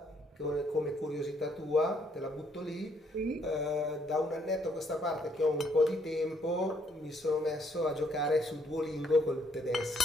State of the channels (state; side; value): normal; both; correlation 0.69